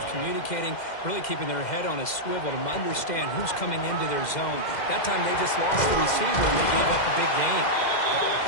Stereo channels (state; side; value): late; right; 2.1 ms